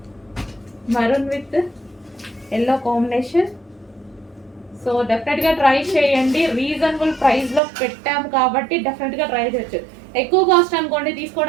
Maroon with yellow combination. So డెఫినెట్గా ట్రై చేయండి, రీజనబుల్ ప్రైస్లో పెట్టాము కాబట్టి డెఫినెట్గా ట్రై చేయొచ్చు. ఎక్కువ కాస్ట్ అనుకోండి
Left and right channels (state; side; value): drops out; left; at 7.6 s